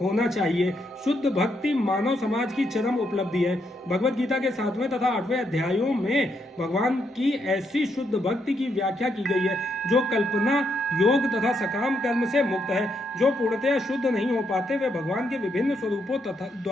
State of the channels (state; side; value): normal; both; correlation 0.77